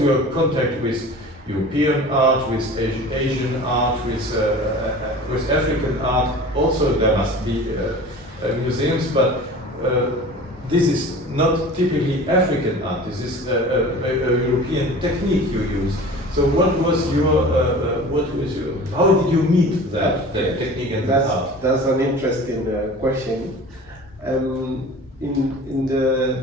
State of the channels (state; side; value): normal; both; correlation 0.40